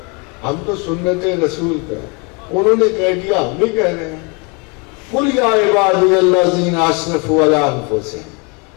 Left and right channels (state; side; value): quieter; right; 31.5 dB